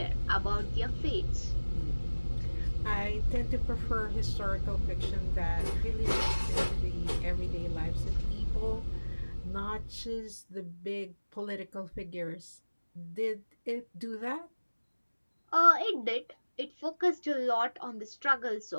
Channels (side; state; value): both; inverted; correlation -1.00